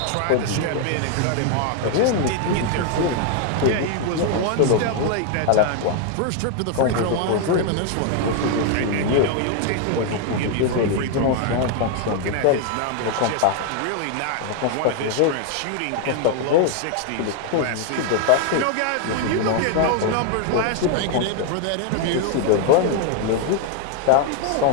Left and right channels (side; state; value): both; different; correlation 0.00